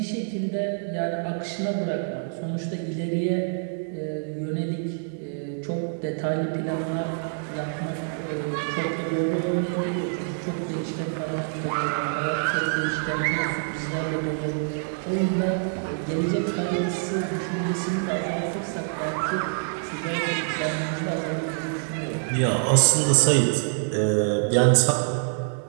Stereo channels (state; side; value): silent; left; digital silence